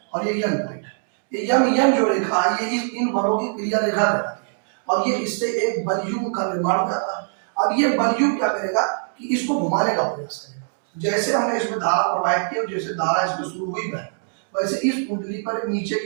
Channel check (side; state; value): left; silent; digital silence